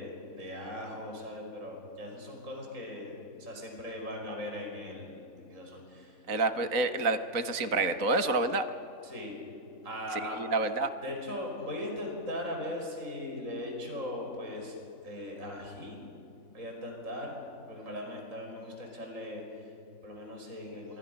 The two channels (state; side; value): late; left; 3.9 ms